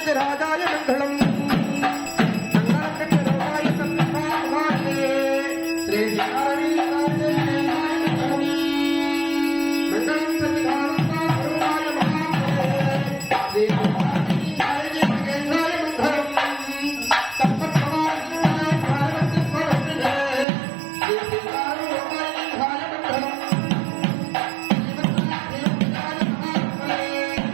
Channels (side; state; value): left; drops out; at 20.5 s